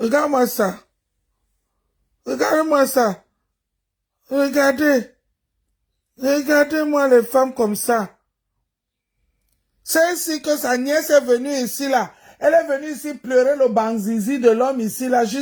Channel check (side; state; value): both; identical; correlation 1.00